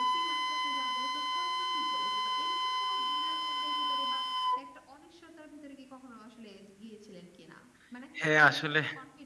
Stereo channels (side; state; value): both; identical; correlation 1.00